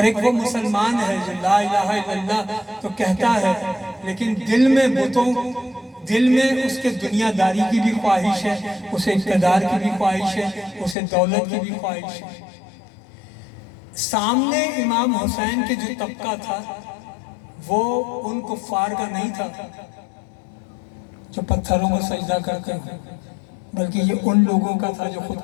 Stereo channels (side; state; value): right; drops out; at 11.0 s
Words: ایک وہ مسلمان ہے جو لا الہ الا اللہ تو کہتا ہے لیکن دل میں بتوں، دل میں اس کے دنیا داری کی بھی خواہش ہے، اسے اقتدار کی بھی خواہش ہے، اسے دولت کی بھی خواہش ہے۔ سامنے امام حسین کے جو طبقہ تھا وہ ان کفار کا نہیں تھا جو پتھروں کو سجدہ کرتے ہیں، بلکہ یہ ان لوگوں کا تھا جو خود